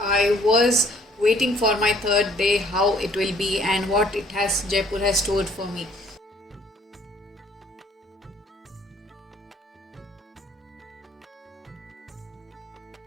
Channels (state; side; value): normal; both; correlation 0.60